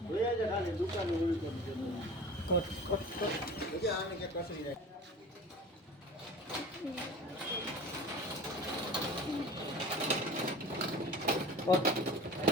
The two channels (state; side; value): normal; both; correlation 0.38